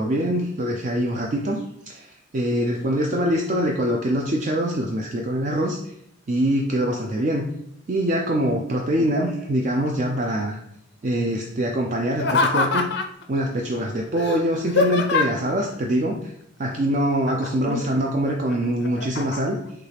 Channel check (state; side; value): normal; both; correlation 0.43